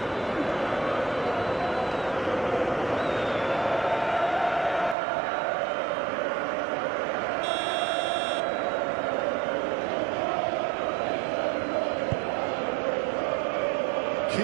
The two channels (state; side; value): drops out; left; at 5.0 s